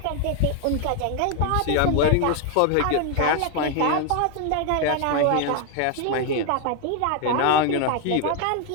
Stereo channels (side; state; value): both; different; correlation 0.01